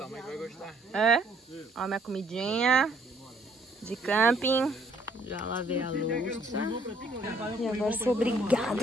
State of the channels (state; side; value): normal; both; correlation 0.64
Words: mãe vai gostar. É? Ó, minha comidinha de camping. Já lavei a louça. E agora sou